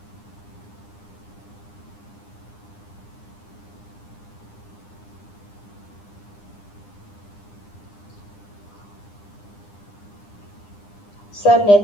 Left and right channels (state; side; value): late; right; 9.9 ms